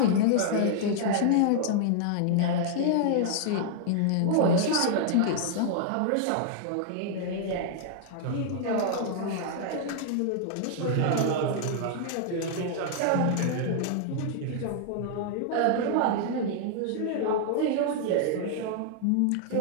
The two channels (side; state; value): both; different; correlation -0.01